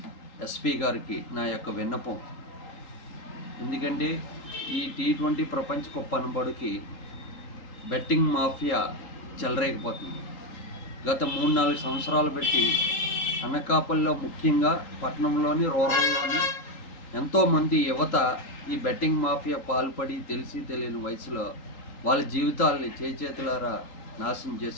ఎస్పీ గారికి నా యొక్క విన్నపం. ఎందుకంటే ఈ T20 ప్రపంచ కప్ అనబడికి బెట్టింగ్ మాఫియా చెలరేగిపోతుంది. గత 3-4 సంవత్సరాలు పెట్టి అనకాపల్లిలో ముఖ్యంగా పట్టణంలోని రూరల్లోని ఎంతోమంది యువత ఈ బెట్టింగ్ మాఫియా పాల్పడి తెలిసి తెలియని వయసులో వాళ్ళ జీవితాలని చేతులారా నాశనం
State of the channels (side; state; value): right; late; 3.8 ms